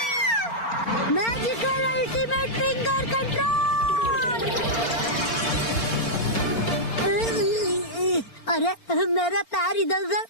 Magical ultimate finger control. अरे मेरा पैर इधर उधर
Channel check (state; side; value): late; right; 4.4 ms